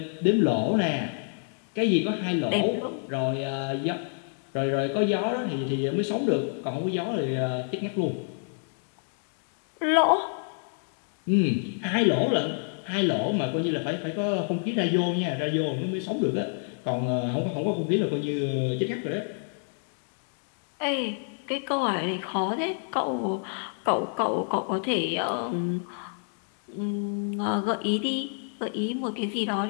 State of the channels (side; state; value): right; silent; 59 dB below the other